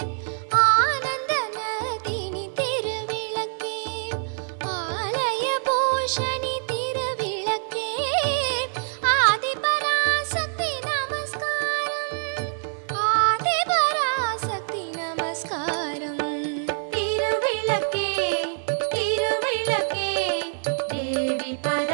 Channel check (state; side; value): silent; left; 62 dB below the other